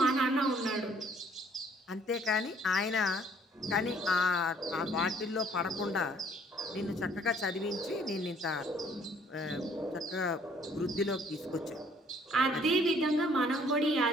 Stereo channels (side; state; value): both; normal; correlation 0.60